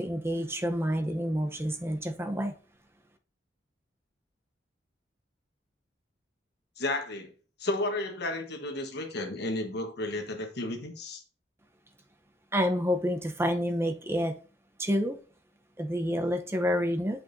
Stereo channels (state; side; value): normal; both; correlation 0.68